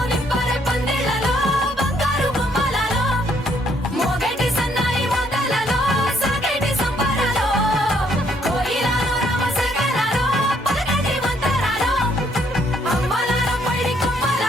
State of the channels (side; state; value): both; normal; correlation 0.69